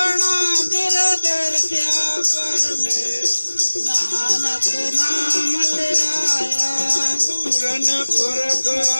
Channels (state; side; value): inverted; both; correlation -1.00